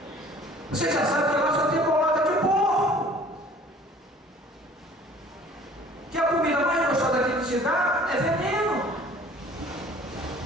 Você já sabe que a nossa temporada de porco. Que a comida mais gostosa que ele te dá é veneno.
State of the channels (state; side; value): normal; both; correlation 0.50